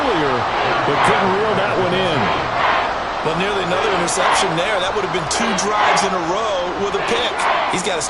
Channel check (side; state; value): both; identical; correlation 1.00